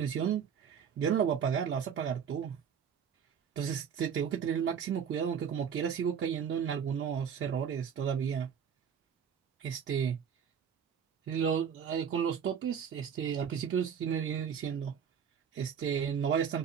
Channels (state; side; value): quieter; left; 7.6 dB